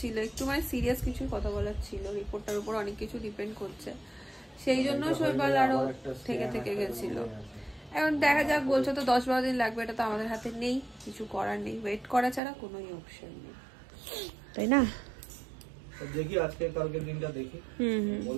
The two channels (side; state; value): left; drops out; at 12.4 s